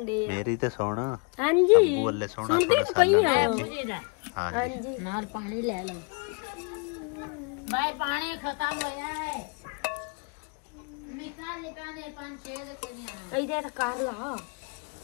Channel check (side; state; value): right; quieter; 34.2 dB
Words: तो सुन। ਹਾਂਜੀ ਅੱਬੂ ਵੱਲੇ ਸੋਹਣਾ ਸੋਹਣਾ ਸਾਲਣ। ਹਾਂਜੀ ਨਾਲ ਪਾਣੀ ਲੈ ਲਓ ਬਾਈ, ਪਾਣੀ ਖਤਮ ਹੋ ਜਾਣਾ ਹੈ। ਨਿਕਾਲ ਲੈ ਪਾਣੀ 5-6 ਦੇ ਕੋਈ ਆਣਾ ਇਹਦੇ ਤਾਂ ਕਰ ਲਾ।